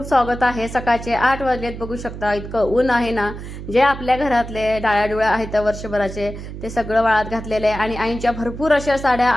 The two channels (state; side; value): noise; right; hum, 10 dB below the sound